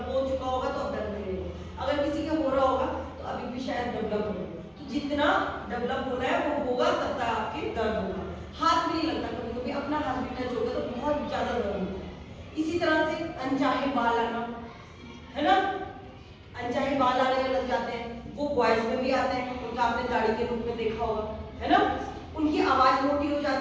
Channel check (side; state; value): both; identical; correlation 1.00